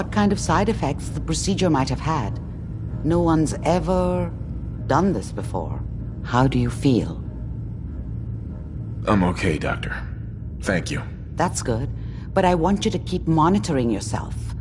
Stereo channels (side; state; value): both; identical; correlation 1.00